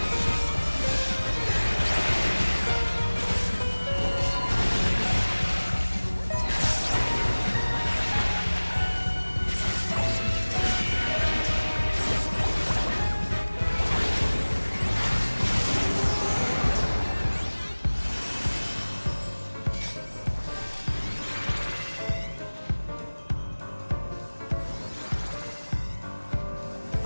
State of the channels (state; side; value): inverted; both; correlation -1.00